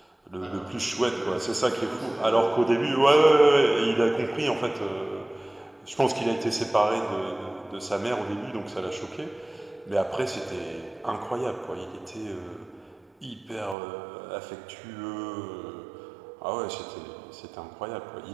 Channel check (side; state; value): left; drops out; at 13.8 s